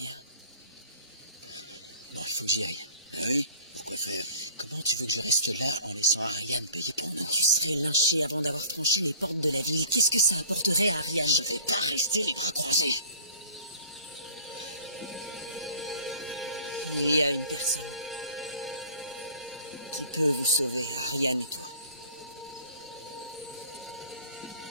Bon, il faut que j'y aille. Ah oui? Pourquoi faire? Comment tu veux que je reste là en laissant Ariane payer pour nous? Tu serais lynché avant d'avoir franchi les portes de la ville. Qu'est-ce que ça apporterait à Ariane? Je vais pas rester les bras croisés. Il y a une personne qui peut vous sauver, Ariane et toi.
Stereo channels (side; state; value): both; inverted; correlation -0.48